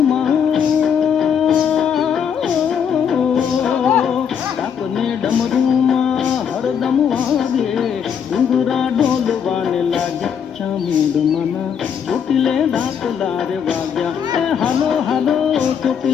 ડાકને ડમરૂમાં હરદમ વાગે. ડુંગરા ડોલવાને લાગ્યા ચામુંડ માના, ચોટીલે ડાકલા રે વાગ્યા. એ હાલો હાલો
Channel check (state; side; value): quieter; right; 7.7 dB